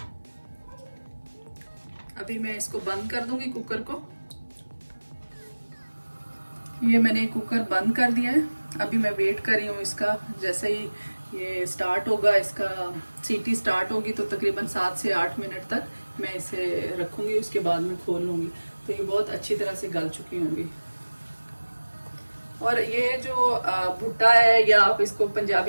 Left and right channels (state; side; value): inverted; both; correlation -1.00